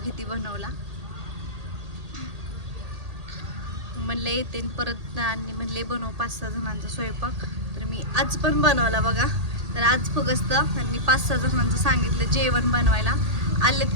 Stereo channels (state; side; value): late; left; 1.8 ms